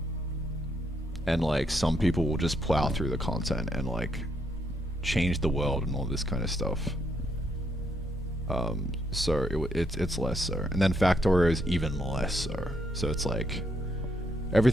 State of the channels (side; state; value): both; normal; correlation 0.76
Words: And like some people will just plow through the content and like change the world and all this kind of stuff. So it's less so. And then Factorio is even less so. So it's like,